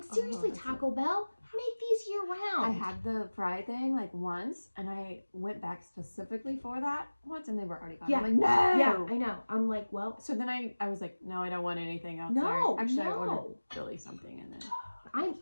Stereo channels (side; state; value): both; inverted; correlation -1.00